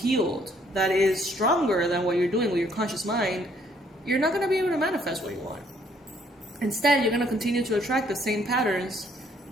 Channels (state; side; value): normal; both; correlation 0.65